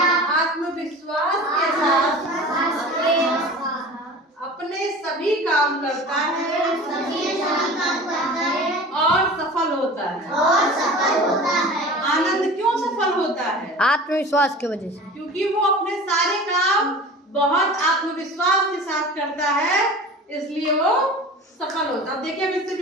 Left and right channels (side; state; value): both; normal; correlation 0.38